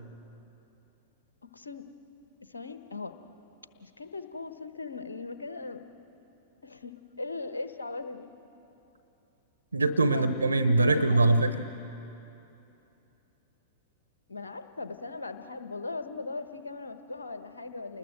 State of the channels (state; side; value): inverted; both; correlation -0.81